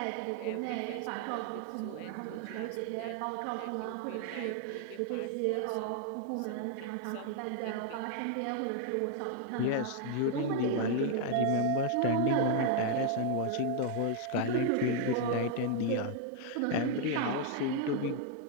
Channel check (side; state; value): both; different; correlation 0.00